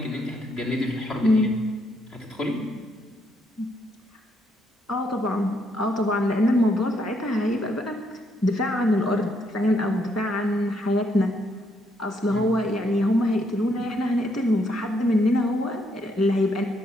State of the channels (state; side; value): normal; both; correlation 0.74